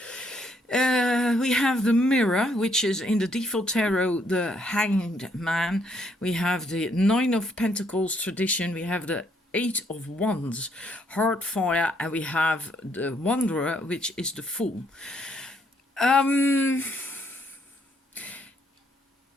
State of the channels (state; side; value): normal; both; correlation 0.71